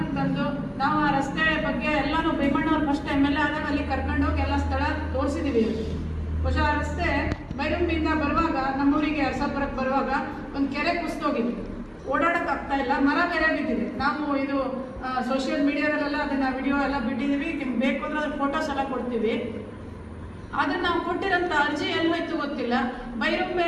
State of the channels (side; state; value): both; identical; correlation 1.00